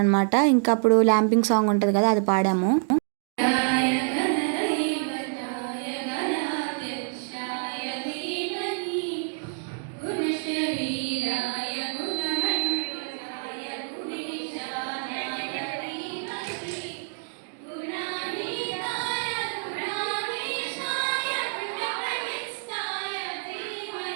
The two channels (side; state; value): left; silent; digital silence